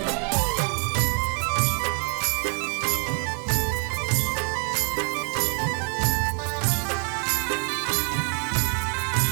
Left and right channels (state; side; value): quieter; left; 39.8 dB